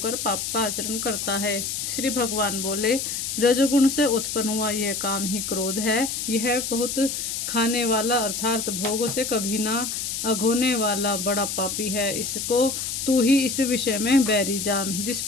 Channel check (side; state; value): left; noise; hiss, 3 dB below the sound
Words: पाप का आचरण करता है। श्री भगवान बोले, रजोगुण से उत्पन्न हुआ यह काम ही क्रोध है। यह बहुत खाने वाला अर्थात भोगों से कभी ना अघोने वाला बड़ा पापी है। इसको तू ही इस विषय में बैरी जान। जिस